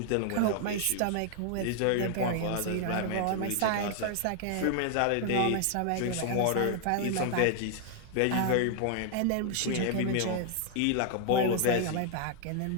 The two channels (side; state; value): both; different; correlation 0.00